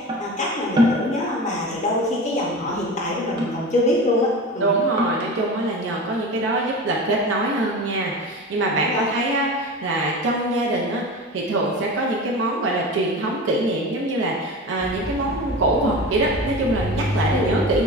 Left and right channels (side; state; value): both; normal; correlation 0.30